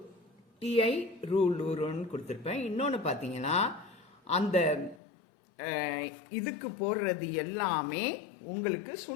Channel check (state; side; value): drops out; right; at 5.0 s